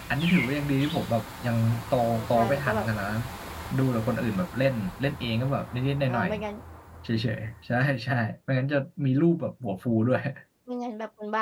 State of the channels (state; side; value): identical; both; correlation 1.00